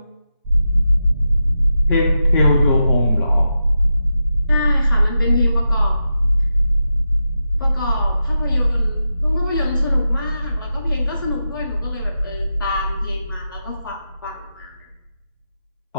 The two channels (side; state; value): both; inverted; correlation -0.88